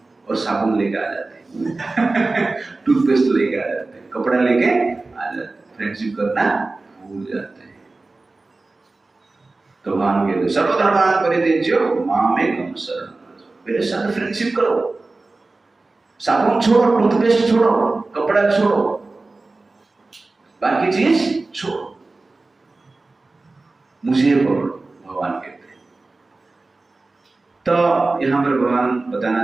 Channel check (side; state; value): left; quieter; 3.4 dB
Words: और साबुन लेके आ जाते हैं टूथपेस्ट लेके आ जाते हैं, कपड़ा लेके आ जाते हैं, फ्रेंडशिप करना भूल जाते हैं। तो भगवान कहते सर्वधर्मान परित्यज्य मामेकं शरणं व्रज, मेरे साथ फ्रेंडशिप करो, साबुन छोड़ो, टूथपेस्ट छोड़ो, कपड़ा छोड़ो, बाकी चीज छोड़ो, मुझे पकड़ो, भगवान कहते हैं। तो यहाँ पर भगवान बताना